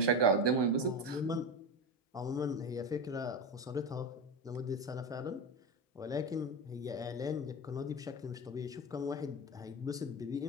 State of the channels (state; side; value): normal; both; correlation 0.20